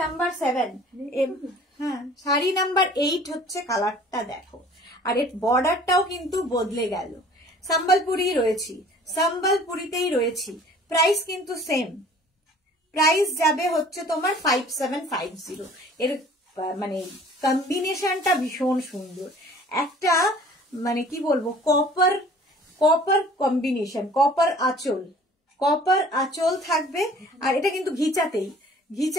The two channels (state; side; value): normal; both; correlation 0.50